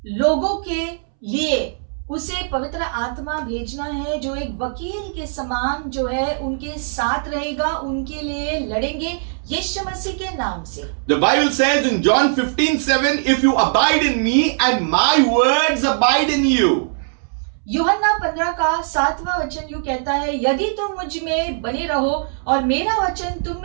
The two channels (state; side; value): silent; left; 66 dB below the other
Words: लोगों के लिए उसे पवित्र आत्मा भेजना है जो एक वकील के समान जो है उनके साथ रहेगा, उनके लिए लड़ेंगे यीशु मसीह के नाम से. The Bible says in John 15:7, if you abide in me and my words abide in you. यूहन्ना 15 का 7वां वचन यूं कहता है, यदि तुम मुझ में बने रहो और मेरा वचन तुम